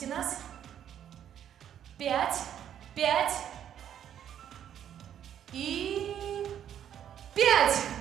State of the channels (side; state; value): left; quieter; 9.9 dB